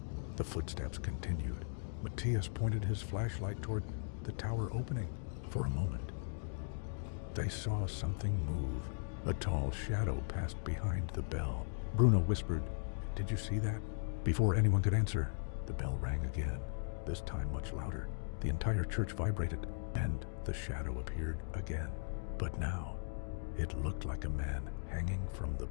the footsteps continued. Matthias pointed his flashlight toward the tower opening. For a moment, they saw something move. A tall shadow passed behind the bell. Bruno whispered, "Did you see that?" Before anyone could answer, the bell rang again, this time much louder. The entire church vibrated, and the shadow appeared again. But now, it looked like a man hanging from the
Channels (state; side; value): silent; right; digital silence